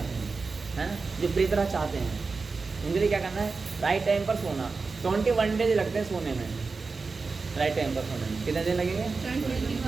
हैं, है ना, जो प्रिय तरह चाहते हैं, उनके लिए क्या करना है? राइट टाइम पर सोना। 21 डेज लगते हैं सोने में, राइट टाइम पर सोने में कितने दिन लगेंगे?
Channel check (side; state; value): left; quieter; 4.3 dB